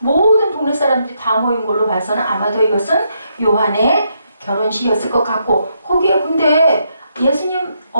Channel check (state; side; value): inverted; both; correlation -0.78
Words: 동네 사람들이 다 모인 걸로 봐서는 아마도 이것은 요한의 결혼식이었을 것 같고 거기에 근데 예수님